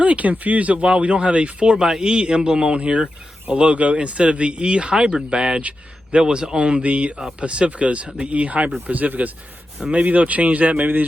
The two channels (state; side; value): normal; both; correlation 0.90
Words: confused at why we don't have a 4xe emblem on here, a logo, instead of the E-Hybrid badge that was on the Pacificas, the E-Hybrid Pacificas. Maybe they'll change that. Maybe